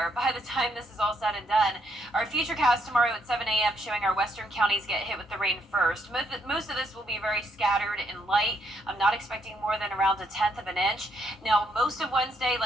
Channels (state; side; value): normal; both; correlation 0.74